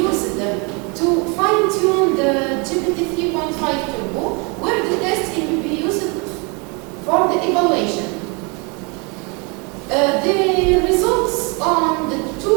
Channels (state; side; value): quieter; left; 31.4 dB